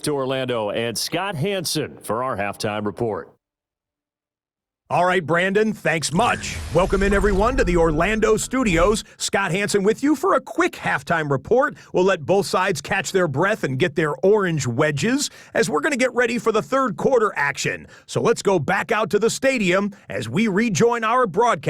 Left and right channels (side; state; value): both; identical; correlation 1.00